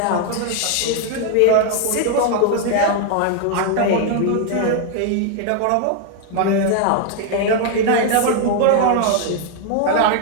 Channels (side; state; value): both; different; correlation 0.00